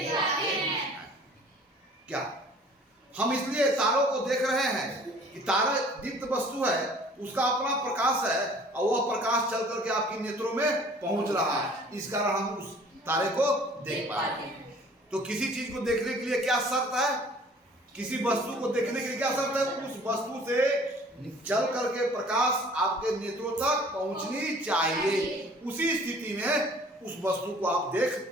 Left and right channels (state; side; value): normal; both; correlation 0.51